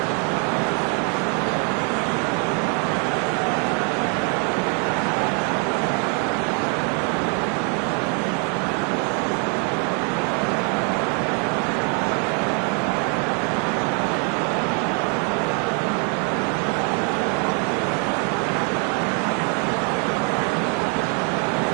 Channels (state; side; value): quieter; left; 38.7 dB